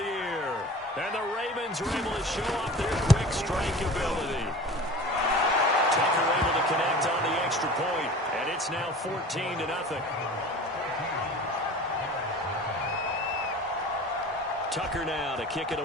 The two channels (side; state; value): both; normal; correlation 0.39